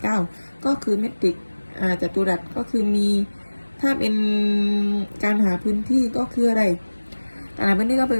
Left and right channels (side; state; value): both; inverted; correlation -1.00